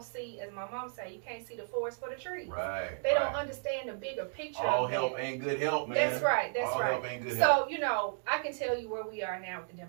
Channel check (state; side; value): silent; left; digital silence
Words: see, as my mom say, you can't see the forest for the trees. Right. They don't understand the bigger picture. All of help that. ain't good help, man. That's right. That's All right. help ain't good help. So, you know, I can tell you where we are now with the